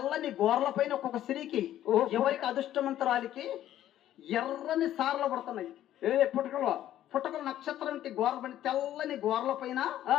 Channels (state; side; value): quieter; right; 12.4 dB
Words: గోర్ల పైన ఒక్కొక్క స్త్రీకి ఎవరికి అదృష్టవంతరాలికి ఎర్రని సార్లు పడుతున్నాయి. పుట్టకల నక్షత్రం అంటే గోర్ల పైన తెల్లని గోర్ల పైన